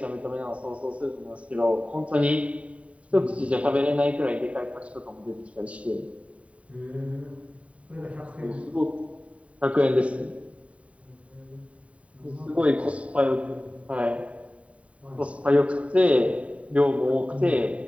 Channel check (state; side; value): late; left; 0.065 ms